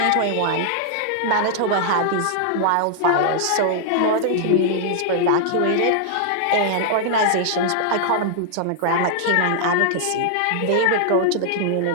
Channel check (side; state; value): both; different; correlation -0.01